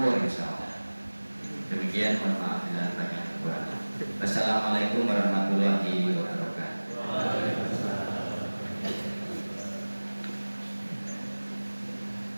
insyaallah. Demikian, mohon maaf bila banyak kekurangan. Wassalamualaikum warahmatullahi wabarakatuh.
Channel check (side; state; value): both; inverted; correlation -1.00